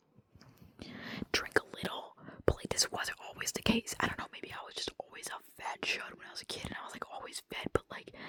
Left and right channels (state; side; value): identical; both; correlation 1.00